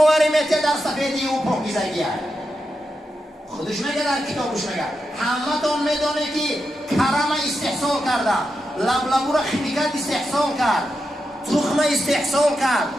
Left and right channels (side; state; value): both; normal; correlation 0.87